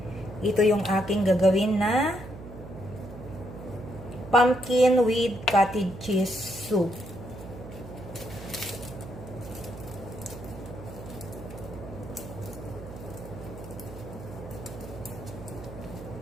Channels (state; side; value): noise; right; hum, 13 dB below the sound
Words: Ito yung aking gagawin na pumpkin with cottage cheese soup.